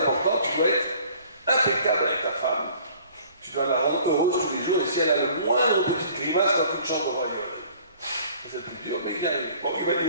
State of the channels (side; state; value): both; inverted; correlation -0.53